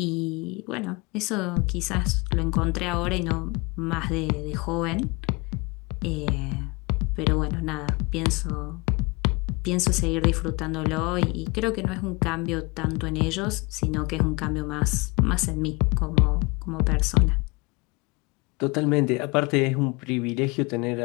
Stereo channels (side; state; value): right; quieter; 26.9 dB